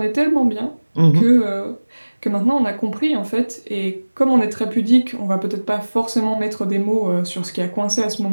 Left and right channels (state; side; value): inverted; both; correlation -1.00